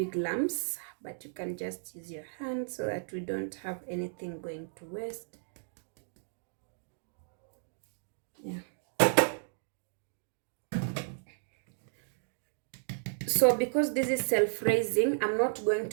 lumps, but you can just use your hand so that we don't have anything going to waste. Yeah. So because this is self-raising, I'm not going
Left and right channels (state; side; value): silent; left; digital silence